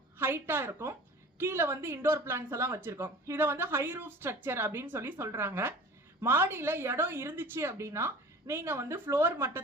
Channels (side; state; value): both; normal; correlation 0.41